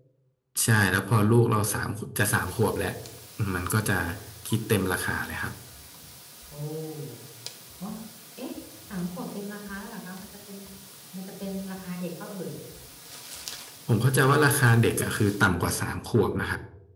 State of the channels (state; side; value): identical; both; correlation 1.00